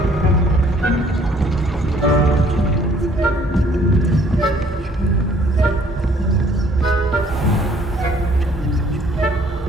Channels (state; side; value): normal; both; correlation 0.60